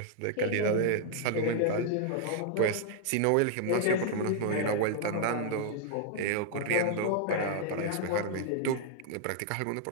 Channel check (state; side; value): different; both; correlation -0.01